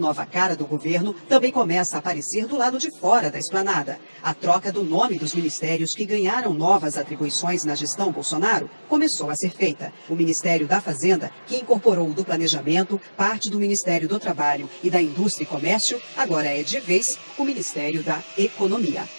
cara do governo também começa a aparecer do lado de fora da esplanada. A troca do nome dos ministérios que ganharam novas atribuições na gestão Bolsonaro começou a ser feita. O Ministério da Fazenda, que incorporou do Planejamento, parte do Ministério do Trabalho e da Indústria e Comércio, agora é de vez o Ministério da Economia.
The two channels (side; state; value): both; inverted; correlation -1.00